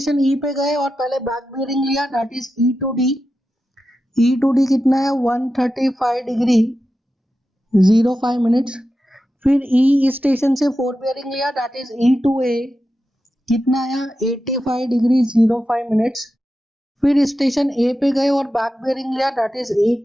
E पे गए और पहले बैक बियरिंग लिया, that is E to D. E to D कितना है 135 डिग्री 05 मिनट्स. फिर E स्टेशन से फोर बियरिंग लिया, that is E to A. कितना आया 85 डिग्री 05 मिनट्स। फिर स्टेशन ए पे गए और बैक बेयरिंग लिया, that is A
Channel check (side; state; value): both; normal; correlation 0.91